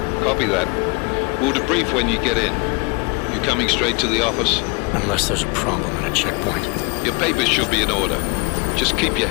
Copy that. We'll debrief when you get in. You coming straight to the office? Unless there's a problem at a checkpoint. Your papers should be in order. Just keep your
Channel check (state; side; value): quieter; right; 31.0 dB